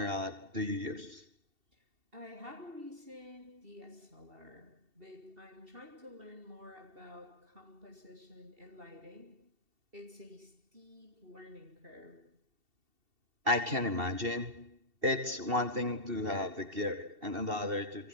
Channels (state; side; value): late; left; 2.7 ms